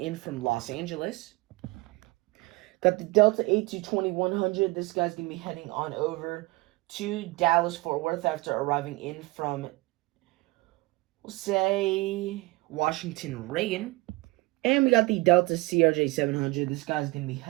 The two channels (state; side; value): quieter; left; 23.4 dB